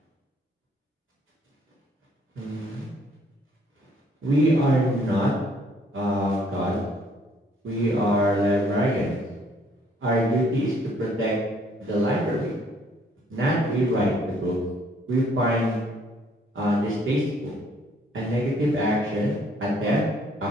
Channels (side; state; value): both; normal; correlation 0.63